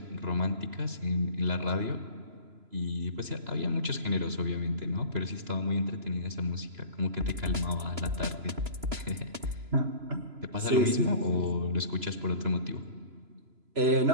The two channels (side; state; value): left; late; 3.0 ms